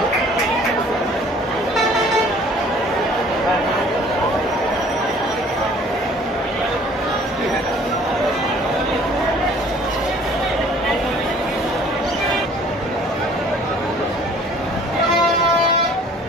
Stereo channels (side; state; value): both; normal; correlation 0.53